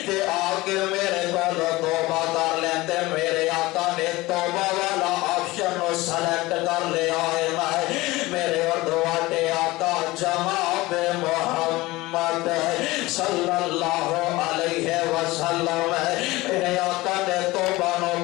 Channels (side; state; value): right; quieter; 20.2 dB